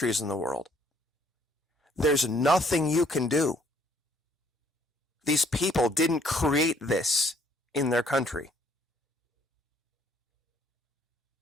in the world. There's nothing you can do. These people didn't create this in their country.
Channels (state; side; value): normal; both; correlation 0.64